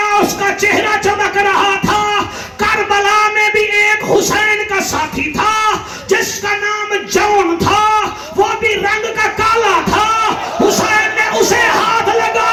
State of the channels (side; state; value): both; identical; correlation 1.00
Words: اس کا چہرہ چمک رہا تھا کربلا میں بھی ایک حسین کا ساتھی تھا جس کا نام جون تھا وہ بھی رنگ کا کالا تھا حسین نے اسے ہاتھ